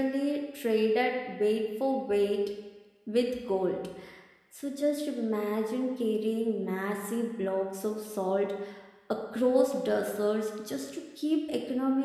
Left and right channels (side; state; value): both; identical; correlation 1.00